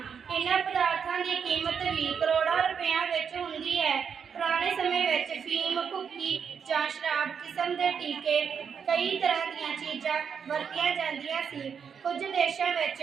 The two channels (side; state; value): left; quieter; 6.9 dB